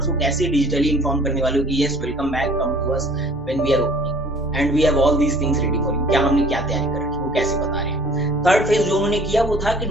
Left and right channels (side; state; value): both; normal; correlation 0.51